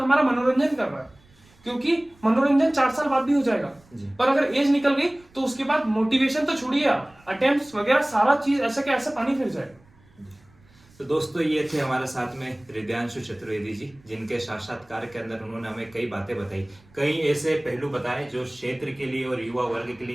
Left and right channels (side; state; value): right; noise; rumble, 29 dB below the sound